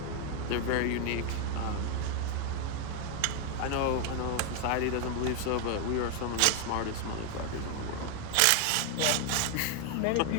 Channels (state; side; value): different; both; correlation 0.00